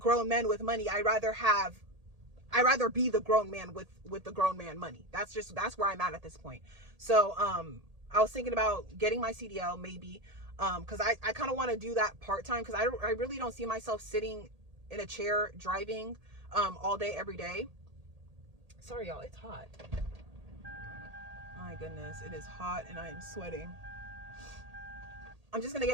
men with money, I'd rather be the grown man with the grown man money. That's where I'm at this point. So, I was thinking about getting my CDL maybe, because I kind of want to do that part-time, because I really don't see myself sitting in a chair driving all day, every day. Sorry, y'all, it's hot. My goodness, it is hot and I am sweating. I'm just going to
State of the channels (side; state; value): left; late; 1.8 ms